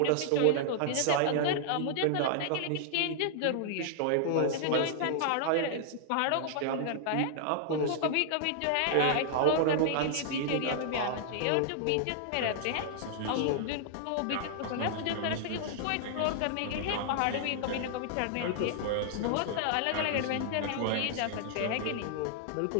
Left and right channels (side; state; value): both; different; correlation -0.01